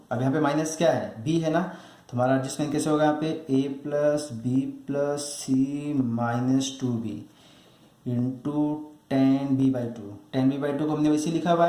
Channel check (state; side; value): identical; both; correlation 1.00